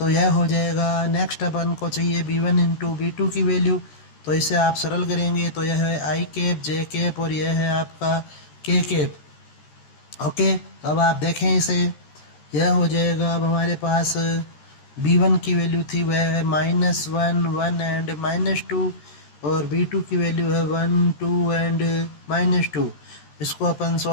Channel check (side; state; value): right; late; 13 ms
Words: यह हो जाएगा, नेक्स्ट अपन को चाहिए B1 इंटू B2 की वैल्यू। तो इसे आप सरल करेंगे तो यह है I कैप J कैप और यह है आपका K कैप। ओके, अब आप देखें इसे, यह हो जाएगा अब हमारे पास B1 की वैल्यू थी वह है -1 1 एंड -2 और B2 की वैल्यू है 1 2 एंड -2। इसको अपन